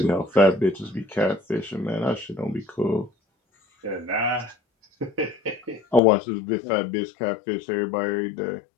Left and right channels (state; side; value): drops out; right; at 6.0 s